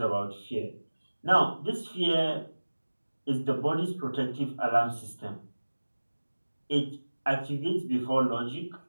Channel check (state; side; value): inverted; both; correlation -1.00